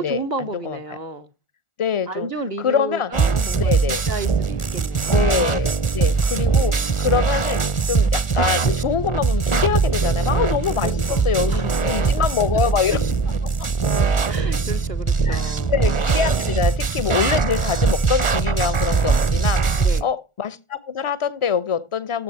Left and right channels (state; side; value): late; right; 1.4 ms